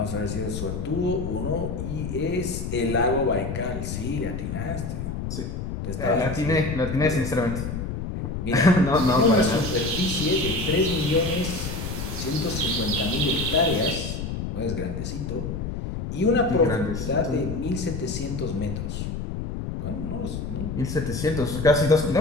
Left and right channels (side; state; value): left; noise; rumble, 5 dB below the sound